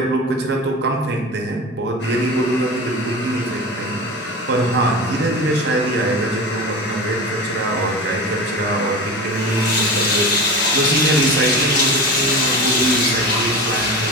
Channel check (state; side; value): normal; both; correlation 0.29